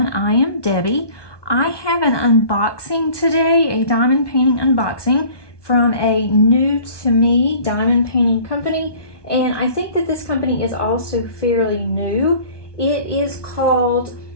I am Debbie. I have an unboxing today, a diamond painting unboxing from a new to me diamond painting company, and I think that this company is also fairly new. It is called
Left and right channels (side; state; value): right; late; 1.2 ms